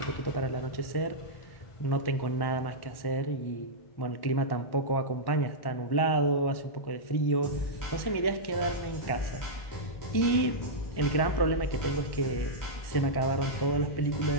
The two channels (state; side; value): late; right; 1.1 ms